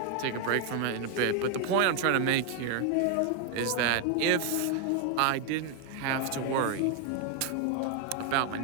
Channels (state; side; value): different; both; correlation 0.01